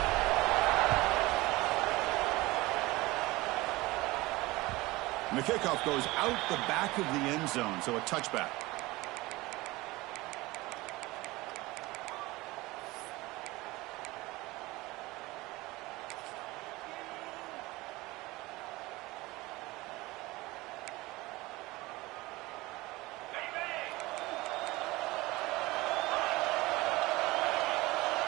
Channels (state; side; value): quieter; left; 20.7 dB